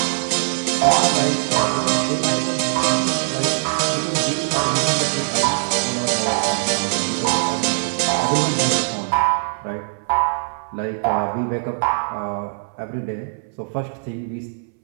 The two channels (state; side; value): silent; left; 65 dB below the other